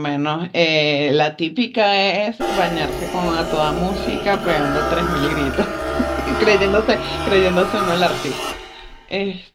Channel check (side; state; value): both; identical; correlation 1.00